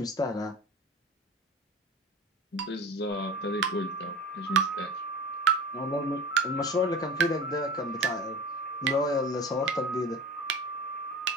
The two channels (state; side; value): normal; both; correlation 0.35